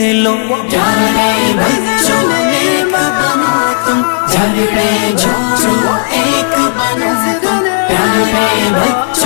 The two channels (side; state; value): right; silent; digital silence